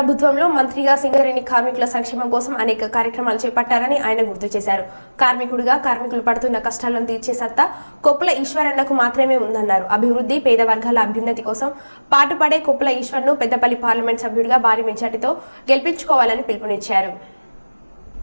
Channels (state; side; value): inverted; both; correlation -1.00